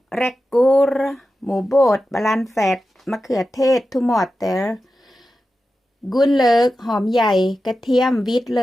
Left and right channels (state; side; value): normal; both; correlation 0.92